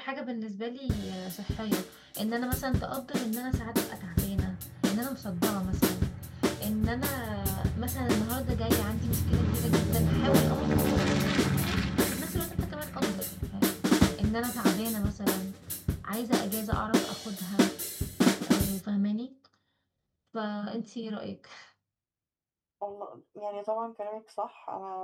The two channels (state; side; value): identical; both; correlation 1.00